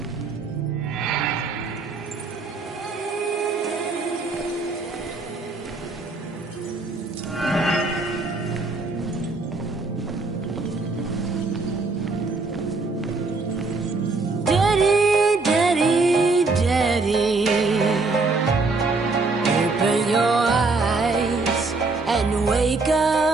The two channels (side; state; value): left; quieter; 3.7 dB